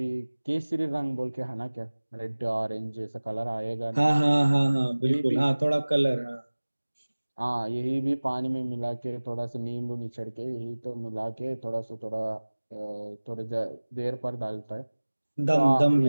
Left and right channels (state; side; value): inverted; both; correlation -1.00